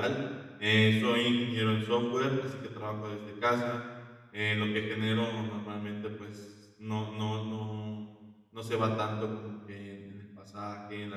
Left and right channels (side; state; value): both; identical; correlation 1.00